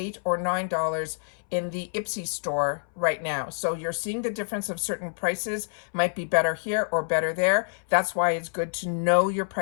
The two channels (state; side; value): silent; right; 60 dB below the other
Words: or $9 in the Ipsy store right now. So you're seeing the difference of certain prices might be better here or better there. That's why it's good to know your